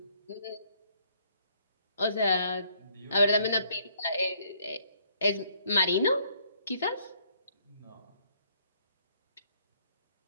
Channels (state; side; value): inverted; both; correlation -0.66